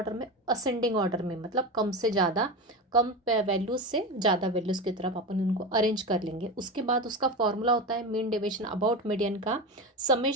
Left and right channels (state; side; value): normal; both; correlation 0.22